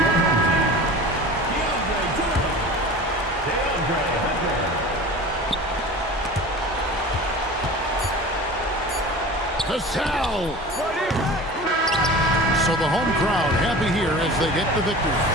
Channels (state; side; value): normal; both; correlation 0.37